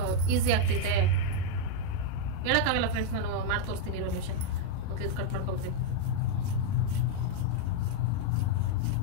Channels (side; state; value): both; different; correlation 0.00